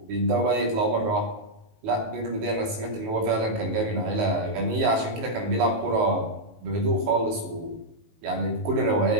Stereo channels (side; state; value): left; late; 18 ms